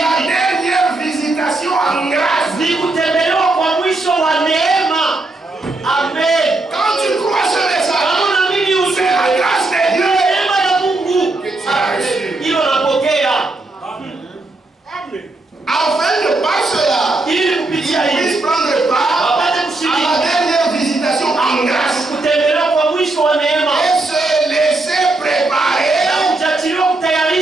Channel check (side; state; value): left; quieter; 3.0 dB